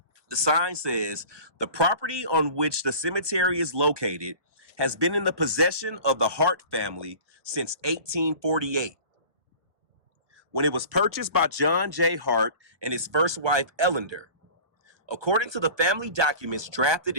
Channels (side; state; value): left; late; 1.2 ms